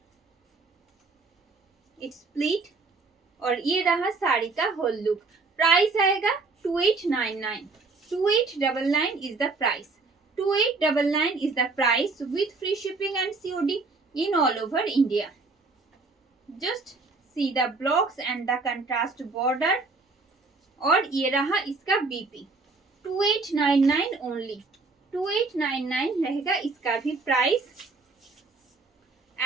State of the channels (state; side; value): quieter; left; 3.9 dB